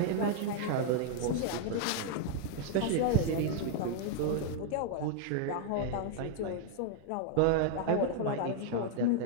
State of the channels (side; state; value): both; different; correlation 0.00